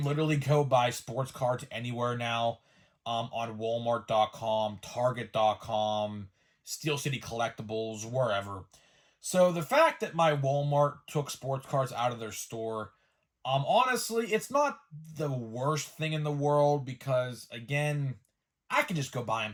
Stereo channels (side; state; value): both; identical; correlation 1.00